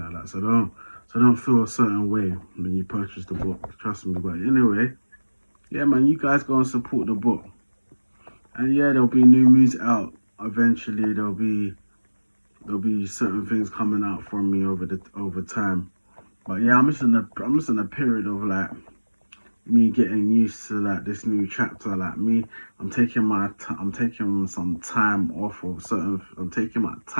like that. So don't feel a certain way when you purchase the book. Trust me. But anyway, yeah, man, you guys go and support the book. And yeah, there'll be new music out eventually. There'll be certain things coming out from me over time. But yeah, I'm just in a period of like me getting used to like this new chapter. Like me, I'm taking some time off of certain. I'm taking my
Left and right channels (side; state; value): both; inverted; correlation -1.00